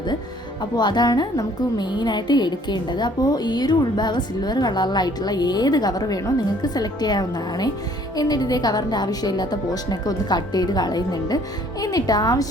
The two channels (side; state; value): both; normal; correlation 0.59